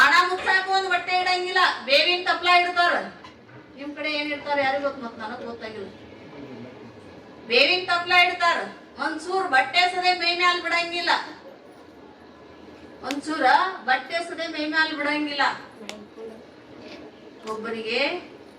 ಮುಚ್ಚಾಕ ಒಂದ್ ಬಟ್ಟೆ ಇಡಂಗಿಲ್ಲ, ಬೇವಿನ ತಪ್ಲ ಇಡ್ತಾರ. ನಿಮ್ ಕಡೆ ಏನ್ ಇಡ್ತಾರ ಯಾರಿಗ ಗೊತ್ತ, ಮತ್ ನನಗ್ ಗೊತ್ತಾಗಿಲ್ಲ. ಬೇವಿನ ತಪ್ಲ ಇಡ್ತಾರ. ಒಂದ್ಸೂರ್ ಬಟ್ಟೆ ಸದೆ ಮೈ ಮ್ಯಾಲ ಬಿಡಂಗಿಲ್ಲ. ಒಂದ್ಸೂರ ಬಟ್ಟೆ ಸದೆ ಮೈ ಮ್ಯಾಲ ಬಿಡಂಗಿಲ್ಲ. ಒಬ್ಬರಿಗೆ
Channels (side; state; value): both; identical; correlation 1.00